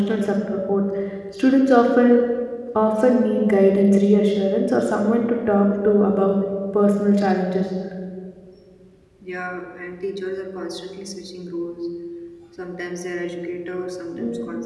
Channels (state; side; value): identical; both; correlation 1.00